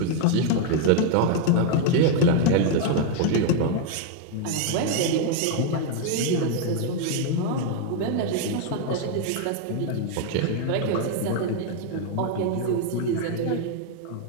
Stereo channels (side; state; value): both; different; correlation 0.00